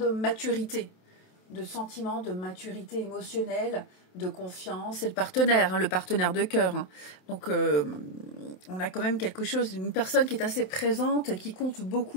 maturité, de sentiment, de maturité émotionnelle, de confiance, c'est le partenaire de cœur. Hein. Donc, on a quand même quelque chose, une personne qui est assez présente, qui compte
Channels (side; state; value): right; late; 27 ms